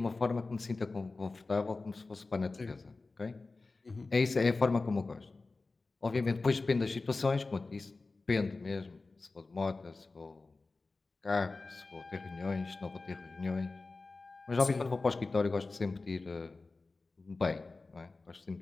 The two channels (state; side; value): quieter; right; 3.6 dB